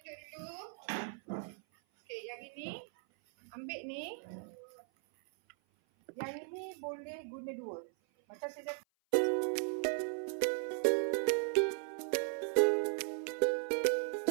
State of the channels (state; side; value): silent; left; 53 dB below the other